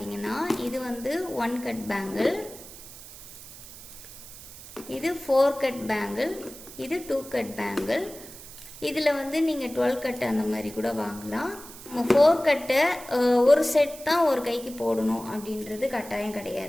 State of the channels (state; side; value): noise; right; hiss, 16 dB below the sound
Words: இது வந்து 1 கட் பேங்கிள், இது 4 கட் பேங்கிள், இது 2 கட் பேங்கிள். இதில் வந்து நீங்கள் 12 கட் அந்த மாதிரி கூட வாங்கலாம். நம்ம 4 கட்டை ஒரு செட் தான் ஒரு கைக்கு போடணும் அப்படின்றது கட்டாயம்